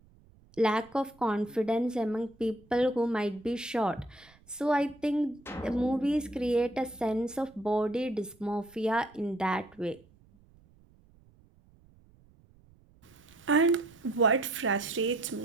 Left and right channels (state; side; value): noise; right; rumble, 28 dB below the sound